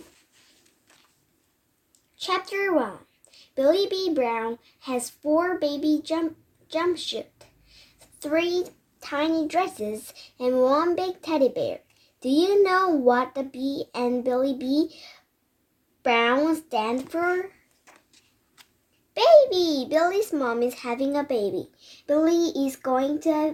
Chapter 1. Billie B. Brown has 4 baby jumpsuits, 3 tiny dresses, and 1 big teddy bear. Do you know what the B and Billie B. Brown stand for? Baby! Billie's mom is having a baby. Billie is going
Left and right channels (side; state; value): both; identical; correlation 1.00